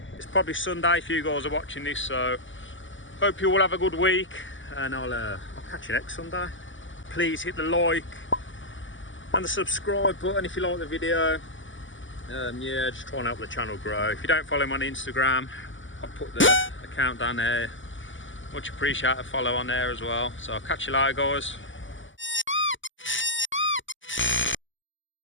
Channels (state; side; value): late; right; 0.55 ms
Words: It's probably Sunday if you guys are watching this, so hope you all have a good week, and I'll catch you next Sunday. Please hit the like and the subscribe button if you like the video. Yeah, just try and help the channel grow. If you don't follow me on Instagram, I'll put the account down there. Much appreciate a follow on there as well. So I'll catch you later, guys.